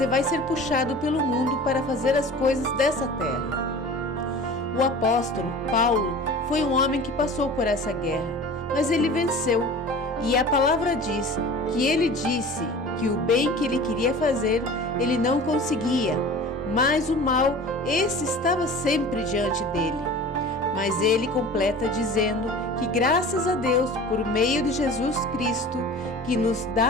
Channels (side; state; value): both; normal; correlation 0.39